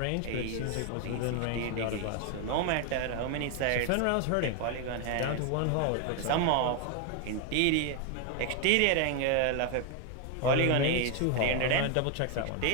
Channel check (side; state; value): both; different; correlation 0.01